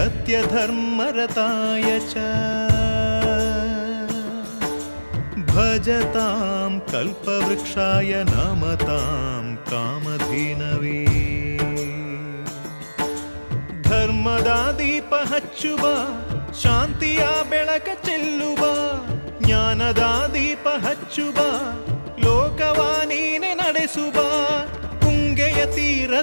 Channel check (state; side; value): inverted; both; correlation -1.00